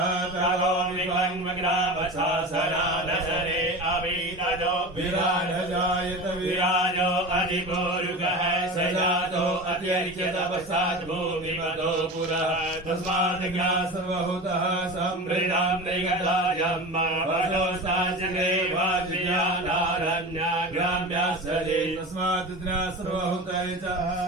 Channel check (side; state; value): both; normal; correlation 0.30